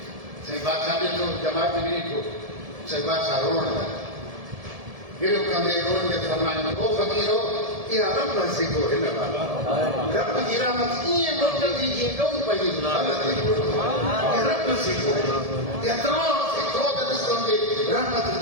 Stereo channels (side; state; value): left; late; 1.7 ms